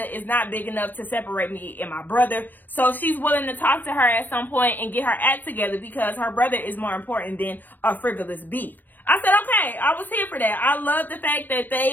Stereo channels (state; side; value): late; right; 0.089 ms